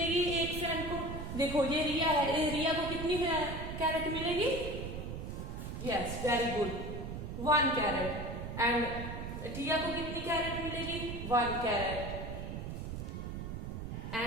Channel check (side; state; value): right; noise; rumble, 6 dB below the sound